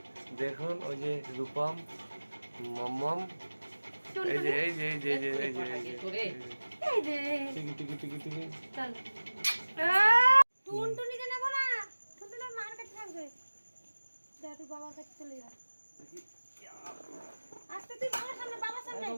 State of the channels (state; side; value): inverted; both; correlation -1.00